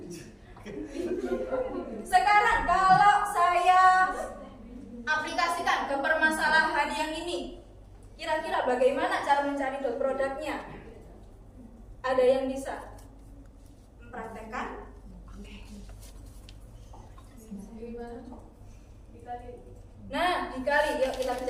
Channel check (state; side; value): identical; both; correlation 1.00